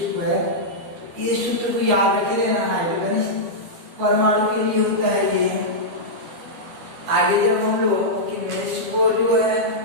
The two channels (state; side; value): late; left; 12 ms